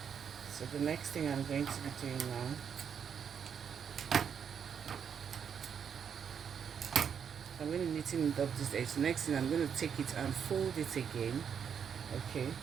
So the next thing I'm going to be doing now, I'm going to neaten up this edge. The next thing I'm going to take it and fold it again. Okay,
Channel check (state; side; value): quieter; left; 7.5 dB